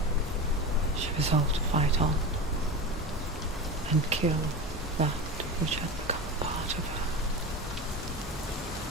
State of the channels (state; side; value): normal; both; correlation 0.26